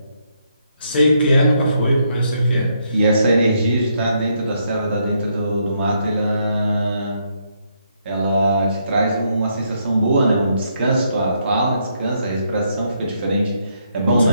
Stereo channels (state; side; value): inverted; both; correlation -0.76